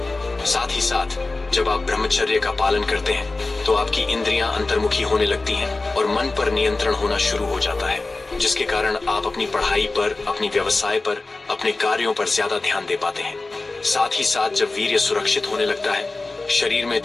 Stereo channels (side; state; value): right; quieter; 3.4 dB